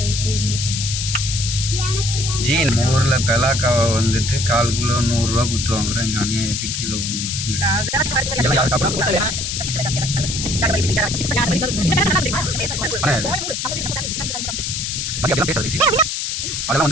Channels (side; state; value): left; noise; hiss, 3 dB below the sound